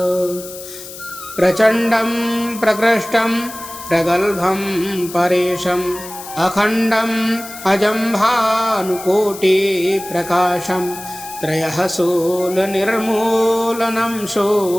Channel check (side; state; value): left; noise; hiss, 13 dB below the sound